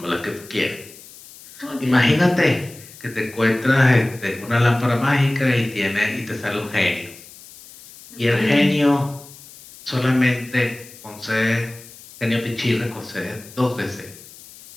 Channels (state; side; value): noise; left; hiss, 20 dB below the sound